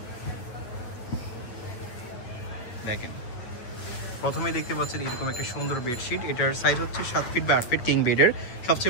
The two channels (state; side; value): late; right; 9.4 ms